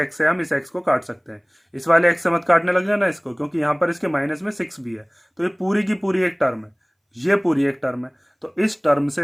से हम इस x को काट सकते हैं। इस वाले x से मत काटने लग जाना इसको, क्योंकि यहाँ पर इसके माइनस में 6 भी है, तो ये पूरी की पूरी एक टर्म है, ये पूरी एक टर्म है। तो इस टर्म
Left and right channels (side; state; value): both; identical; correlation 1.00